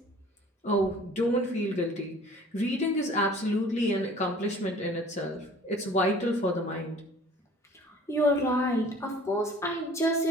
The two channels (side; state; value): both; normal; correlation 0.49